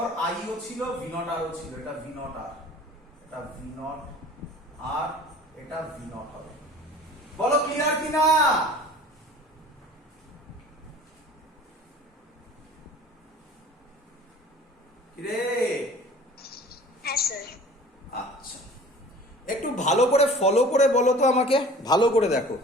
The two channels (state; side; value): normal; both; correlation 0.45